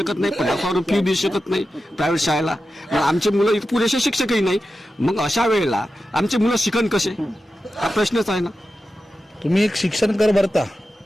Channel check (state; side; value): normal; both; correlation 0.92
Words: नाही, 50,000 फी देऊ शकत नाही प्रायव्हेट शाळेला, आमचे मुलं इथं पुरेसे शिक्षकही नाही. मग अशा वेळेला आमचे मुलं शिकण कसे, हा प्रश्नच आहे ना. तुम्ही एक शिक्षण कर भरता